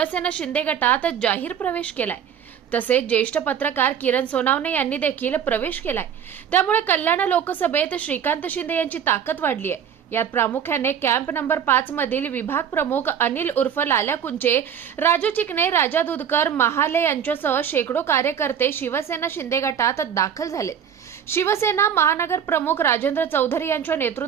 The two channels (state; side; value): quieter; left; 8.3 dB